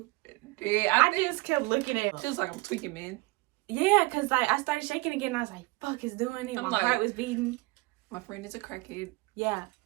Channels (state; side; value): quieter; left; 23.7 dB